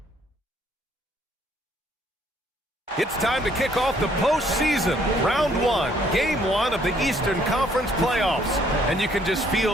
It's time to kick off the postseason. Round 1, Game 1 of the Eastern Conference playoffs. And you can just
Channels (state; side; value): normal; both; correlation 0.65